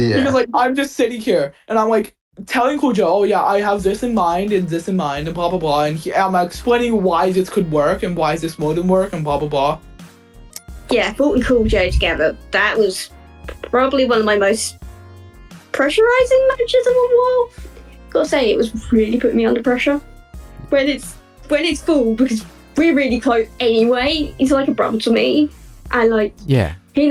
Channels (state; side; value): identical; both; correlation 1.00